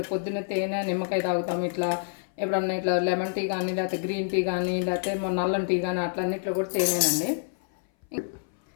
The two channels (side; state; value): right; silent; 58 dB below the other